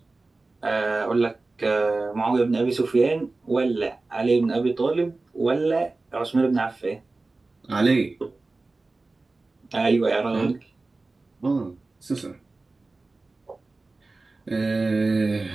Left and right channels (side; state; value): left; quieter; 3.4 dB